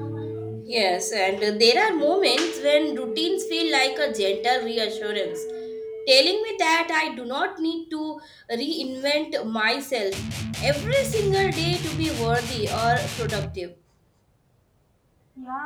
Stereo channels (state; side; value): identical; both; correlation 1.00